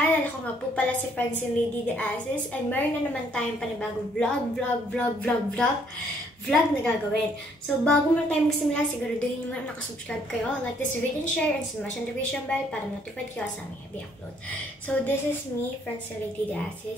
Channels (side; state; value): both; normal; correlation 0.66